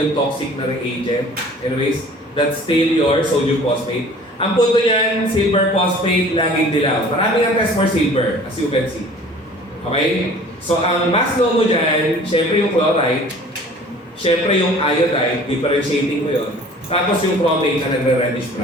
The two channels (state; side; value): normal; both; correlation 0.48